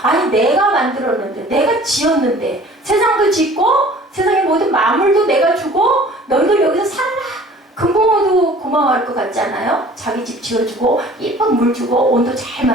아니, 내가 만들었는데, 내가 지었는데, 세상도 짓고, 세상의 모든 만물도 내가 주고, 너희들 여기서 살아라. 금붕어도 고마워할 것 같지 않아요? 자기 집 지어주고, 예쁜 물 주고, 온도 잘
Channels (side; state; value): both; normal; correlation 0.49